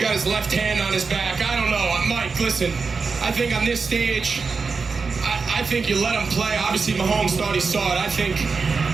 his left hand on his back. I don't know. Mike, listen, I think on this stage, I think you let him play. Obviously, Mahomes thought he saw it. I think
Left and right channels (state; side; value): quieter; left; 4.8 dB